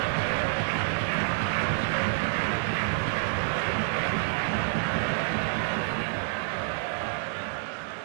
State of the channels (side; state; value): left; silent; 59 dB below the other